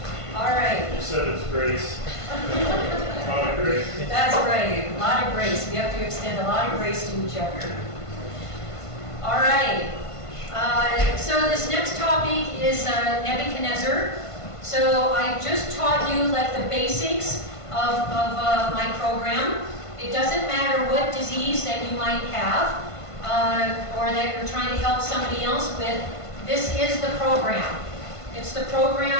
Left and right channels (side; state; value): right; late; 1.5 ms